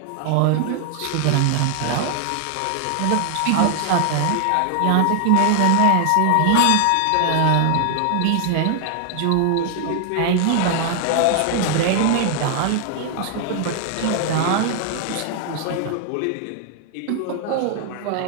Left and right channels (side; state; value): both; different; correlation 0.00